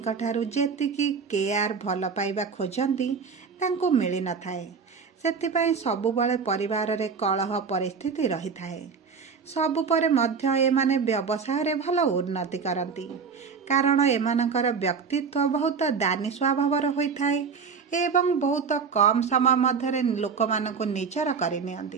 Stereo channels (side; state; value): left; quieter; 5.7 dB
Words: ଠାରୁ ଯେତିକି କେୟାର, ଭଲ ପାଇବା ଖୋଜନ୍ତି, ତାଙ୍କୁ ମିଳିନଥାଏ। ସେଥିପାଇଁ ସବୁବେଳେ ପରିବାରରେ କଳହ ପରିସ୍ଥିତି ରହିଥାଏ। ସବୁ ପରେ ମଧ୍ୟ ଏମାନେ ବ୍ୟବସାୟରେ ଭଲ ଉନ୍ନତି କରନ୍ତି, କାରଣ ଏମାନଙ୍କର ବ୍ୟକ୍ତିତ୍ୱ ବହୁତ ଦାନୀ ସ୍ୱଭାବର ହୋଇଥାଏ ଏବଂ ବହୁତ କମ୍ ସମୟ ମଧ୍ୟରେ ଲୋକମାନଙ୍କୁ ନିଜର